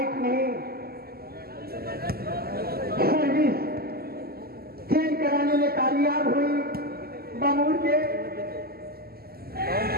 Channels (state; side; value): late; left; 0.45 ms